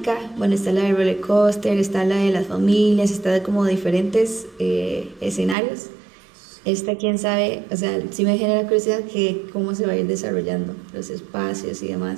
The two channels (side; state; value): left; drops out; at 5.6 s